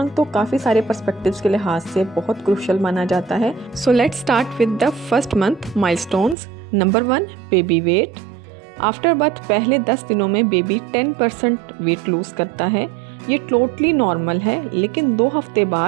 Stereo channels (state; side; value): drops out; left; at 6.4 s